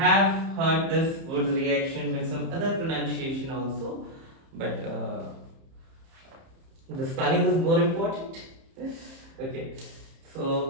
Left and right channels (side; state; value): left; late; 30 ms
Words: heard this Wood's reaction with some other pronunciation also, but the spelling is more important. Okay,